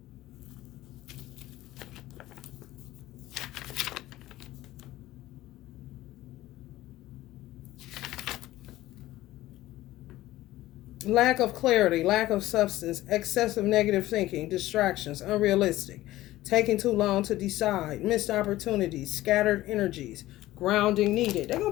Lack of clarity, lack of substance, excessive negative thinking, distractions, unrealistic, taking too long to decide, missed opportunities, scattered energies, grounding needed. They're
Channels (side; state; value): right; quieter; 16.1 dB